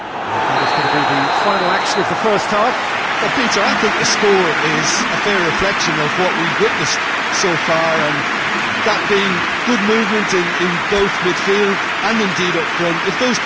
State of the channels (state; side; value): identical; both; correlation 1.00